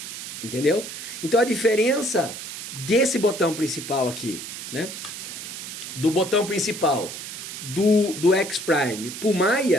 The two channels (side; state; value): right; noise; hiss, 9 dB below the sound